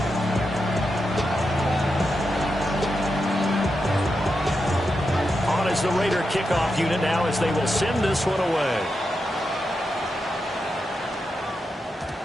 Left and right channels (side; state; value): both; normal; correlation 0.87